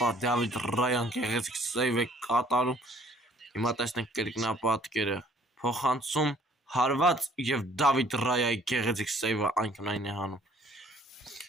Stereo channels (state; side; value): normal; both; correlation 0.58